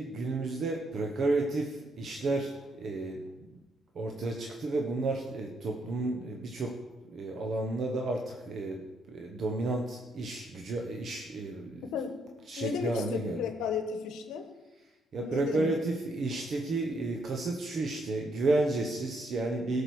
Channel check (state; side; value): normal; both; correlation 0.74